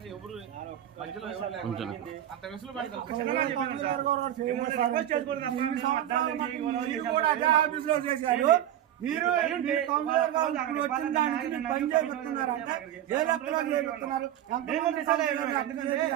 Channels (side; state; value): left; quieter; 11.7 dB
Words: ఎవరు మధ్యలో ఎవరు లేకుండా అంత వెసులుబాటు మీరు కౌన్సిలర్ గా వచ్చిన దానికి మీరు పని చేస్తున్నారంటే ఏ లెక్కలో చేస్తున్నారు?